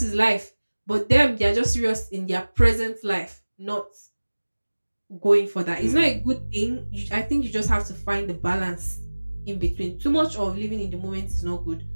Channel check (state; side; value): inverted; both; correlation -1.00